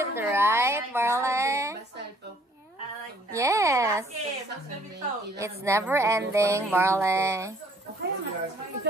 right, Barley? Yes. It's never ending, Barley.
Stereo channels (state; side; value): normal; both; correlation 0.61